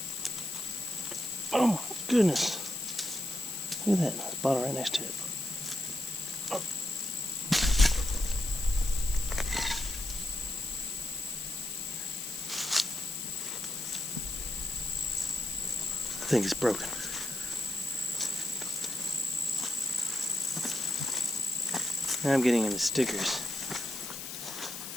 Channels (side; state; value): left; noise; hiss, 8 dB below the sound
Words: Oh my goodness. Look at that. There's a bottle right next to it. Oh. I think it's broken. Now I'm getting into stickers.